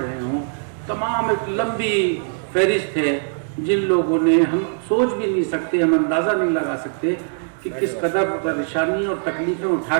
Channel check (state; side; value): silent; left; digital silence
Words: हों, तमाम एक लंबी फहरिस्त है जिन लोगों ने, हम सोच भी नहीं सकते, हम अंदाज़ा नहीं लगा सकते कि किस कदर परेशानी और तकलीफ़ें उठा